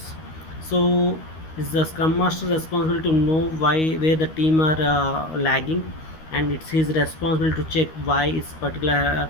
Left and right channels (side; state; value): right; late; 13 ms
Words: So is the scrum master responsible to know why where the team are lagging, and it's his responsibility to check why this particular